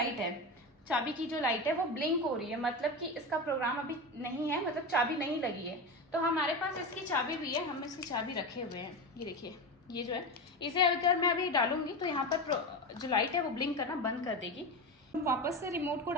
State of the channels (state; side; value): normal; both; correlation 0.21